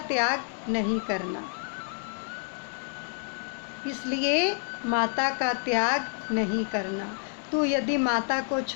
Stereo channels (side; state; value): right; silent; 59 dB below the other